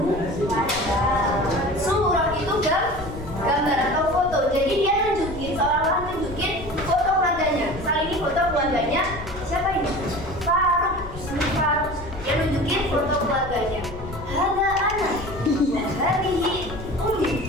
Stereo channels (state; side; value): noise; left; rumble, 12 dB below the sound